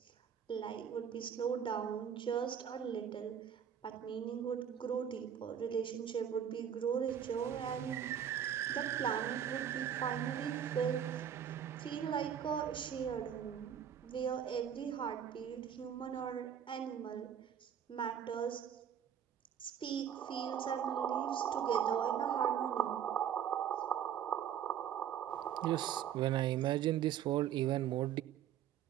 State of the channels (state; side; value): quieter; left; 9.1 dB